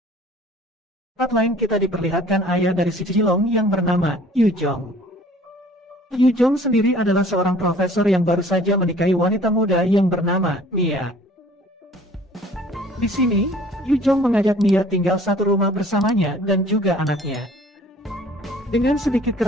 lain kita diperlihatkan ayah dari si Jilong yang bernama Yu Jong. Yu Jong sendiri adalah seorang profesor yang baru saja menikahi wanita muda yang bernama Mia. Di sini, Yu Jong mengajak Mia tinggal satu rumah bersamanya dan juga anaknya. Dengan sedikit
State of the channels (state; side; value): normal; both; correlation 0.52